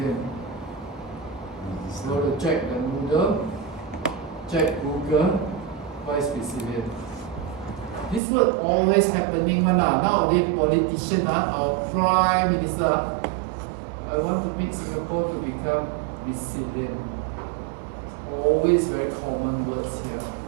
Go to check the Moodle, check Google, what is resilient? This word always happening nowadays politician, our prime minister, I want to make Singapore to become resilient. Always very common words here.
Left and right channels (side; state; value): left; drops out; at 8.2 s